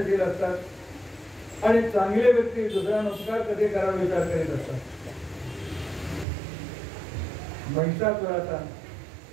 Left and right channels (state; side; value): drops out; left; at 6.2 s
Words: असतात आणि चांगले व्यक्ती दुसऱ्यांना उपकार कधी करावा विचार करीत असतात. महिषासुराचा